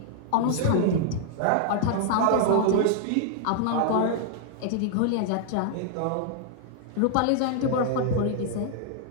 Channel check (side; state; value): both; different; correlation -0.01